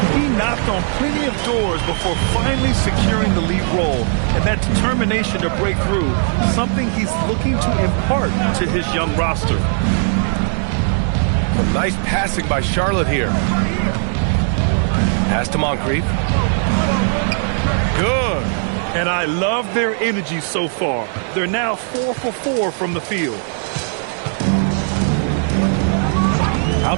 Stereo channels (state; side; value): silent; left; 65 dB below the other